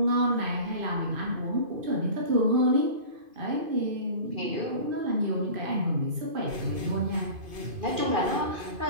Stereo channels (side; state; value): left; late; 2.5 ms